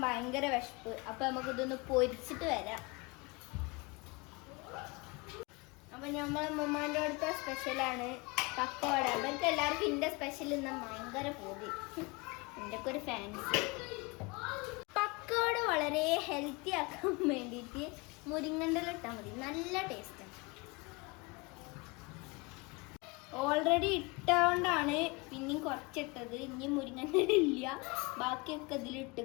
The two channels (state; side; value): quieter; right; 26.9 dB